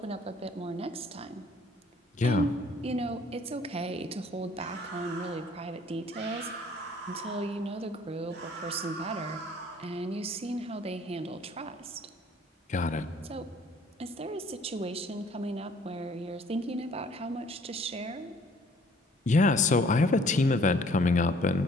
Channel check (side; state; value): both; normal; correlation 0.57